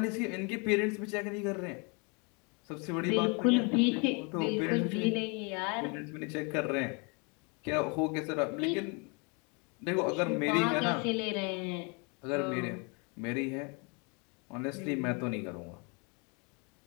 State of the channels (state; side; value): quieter; right; 32.9 dB